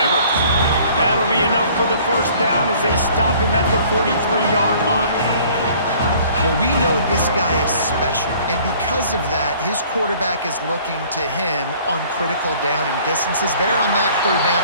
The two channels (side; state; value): both; inverted; correlation -0.54